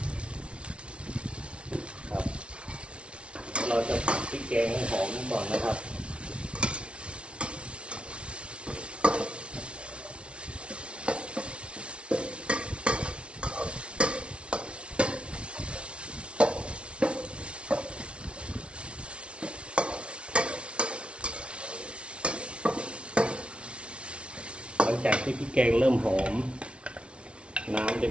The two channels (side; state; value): left; late; 0.059 ms